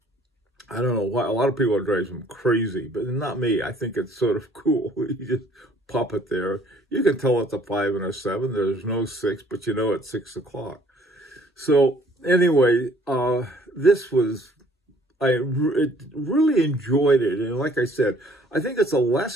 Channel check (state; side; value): normal; both; correlation 0.59